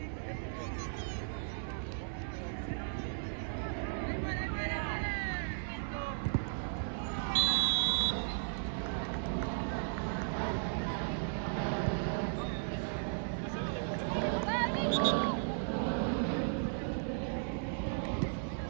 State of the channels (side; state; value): left; silent; 54 dB below the other